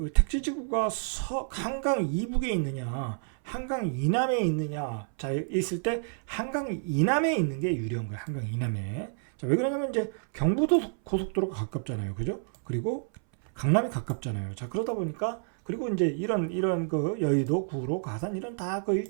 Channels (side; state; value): left; silent; 58 dB below the other